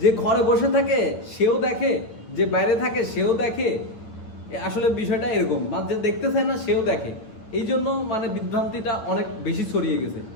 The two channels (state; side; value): late; right; 9.3 ms